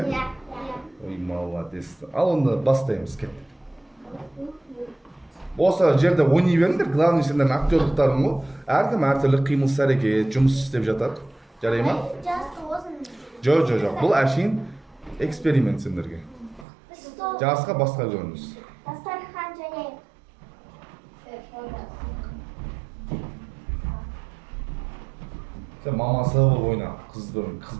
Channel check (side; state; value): left; drops out; at 16.7 s